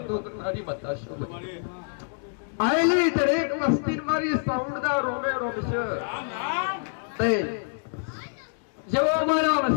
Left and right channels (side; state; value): right; silent; digital silence